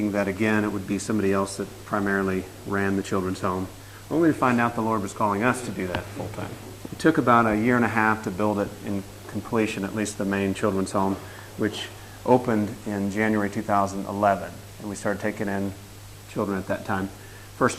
that again it would be somebody else that primarily ran the children's home, only to find out the Lord was calling us to do that full-time. It took about a year and a half to build it in completion, at least the main children's home, which opened in January 2011, and we started taking in children at that time. First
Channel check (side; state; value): both; identical; correlation 1.00